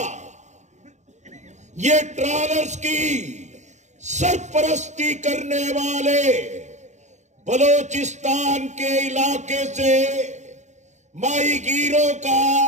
یہ ٹرالرز کی سرپرستی کرنے والے بلوچستان کے علاقے سے ماہی گیروں کا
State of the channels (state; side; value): late; left; 0.34 ms